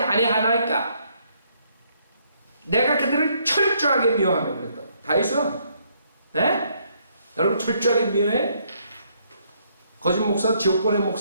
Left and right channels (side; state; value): both; inverted; correlation -0.70